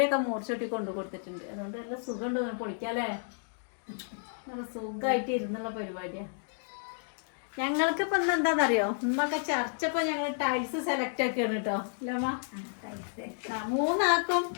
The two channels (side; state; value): right; silent; digital silence